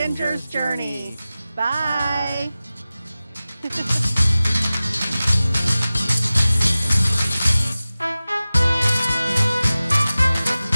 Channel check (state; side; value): inverted; both; correlation -0.97